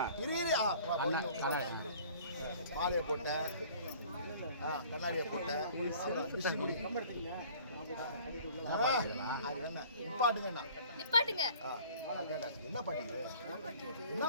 இரு மாலையை போட்ட, கண்ணாடியை போட்ட, நிப்பாட்டுங்க. என்ன பாட்டு இது? என்ன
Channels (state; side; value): inverted; both; correlation -0.50